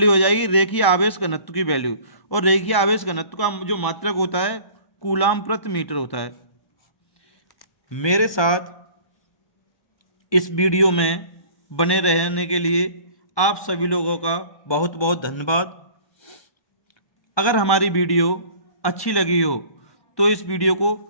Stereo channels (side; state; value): right; late; 1.1 ms